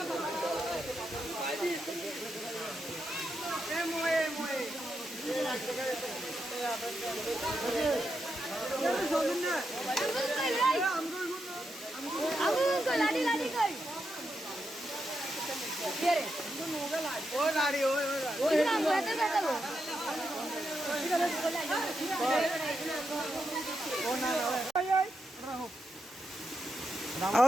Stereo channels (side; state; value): both; normal; correlation 0.84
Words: लाडी लाडी कर ओ लाडी ओ नाम कहते कहते वो